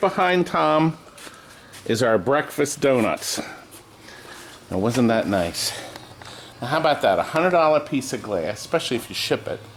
Tom is our breakfast donuts. Now, wasn't that nice? Now, how about that? $100 piece of glass, especially if you ship it.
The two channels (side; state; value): both; identical; correlation 1.00